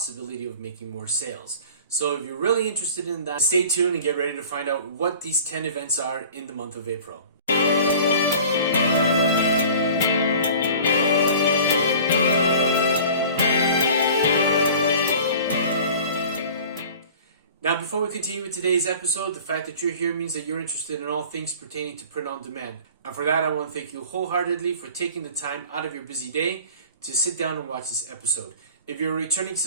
of making more sales. So if you're really interested in that, stay tuned and get ready to find out what these 10 events are in the month of April. Now, before we continue with today's episode, the fact that you're here means that you're interested in all things pertaining to print on demand. And for that, I want to thank you wholeheartedly for taking the time out of your busy day to sit down and watch this episode. If you're a returning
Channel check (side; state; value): both; inverted; correlation -0.43